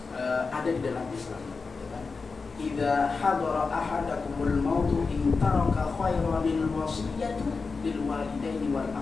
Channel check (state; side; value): quieter; right; 4.5 dB